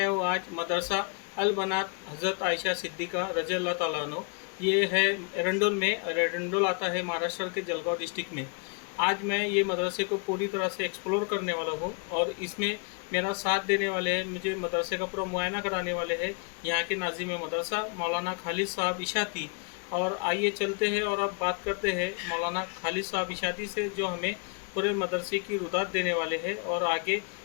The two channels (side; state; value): right; quieter; 36.0 dB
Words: हूँ आज मदरसा अल बनात हज़रत आयशा सिद्दीक़ा रज़ी अल्लाह ताला अन्हो। ये है एरंडोल में, और एरंडोल आता है महाराष्ट्र के जलगांव डिस्ट्रिक्ट में। आज मैं ये मदरसे को पूरी तरह से एक्सप्लोर करने वाला हूँ और इसमें मेरा साथ देने वाले हैं, मुझे मदरसे का पूरा मुआयना कराने वाले हैं यहाँ के नाज़िम मदरसा मौलाना खालिद साहब इशाती। और आइए चलते हैं और अब बात करते हैं मौलाना खालिद साहब इशाती से, जो हमें पूरे मदरसे की रुदात देने वाले हैं और आगे